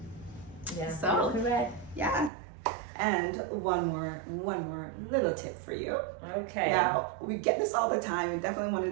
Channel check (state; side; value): drops out; left; at 2.3 s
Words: Yeah. So- You're correct. Yeah. And one more little tip for you. Okay. Now, we get this all the time, and definitely